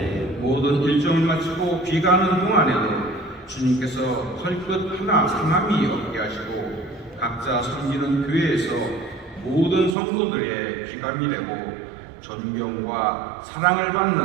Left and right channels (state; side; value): drops out; left; at 10.0 s